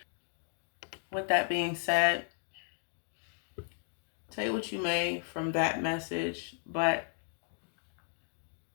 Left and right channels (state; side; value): silent; right; 54 dB below the other